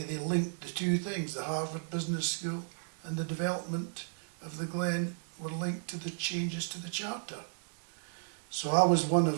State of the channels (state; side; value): silent; left; digital silence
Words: they linked the two things. The Harvard Business School and the development of the Glen were linked to the changes to the charter. So I was one